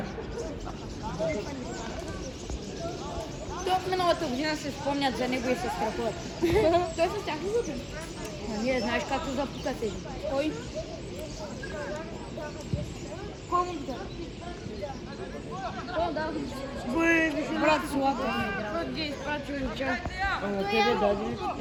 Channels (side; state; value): both; identical; correlation 1.00